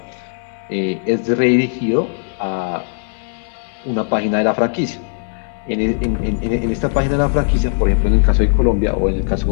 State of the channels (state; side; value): silent; right; 64 dB below the other